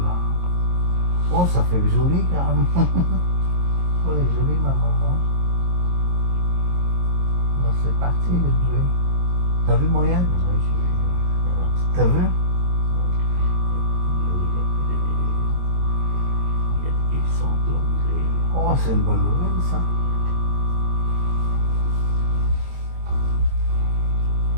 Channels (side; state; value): left; late; 22 ms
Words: Oh, ça fait joli carrément. Oh, elle est jolie ma maman. Là, c'est parti le bleu. T'as vu moyenne? T'as vu? Oh, c'est une bonne nouvelle ça.